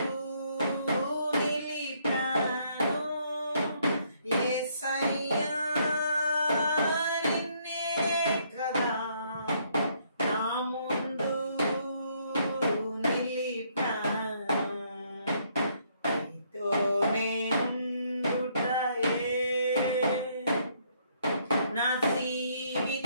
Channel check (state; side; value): inverted; both; correlation -0.69